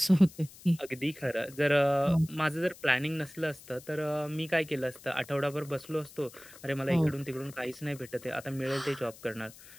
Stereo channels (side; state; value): left; noise; hiss, 20 dB below the sound